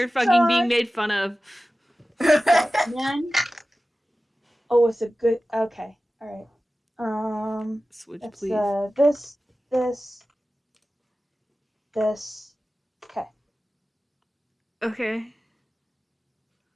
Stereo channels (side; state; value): both; normal; correlation 0.96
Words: fucking being made fun of. Man. Oh, it's a good. Okay. All right. Switch, it's, please. This. Okay. Okay.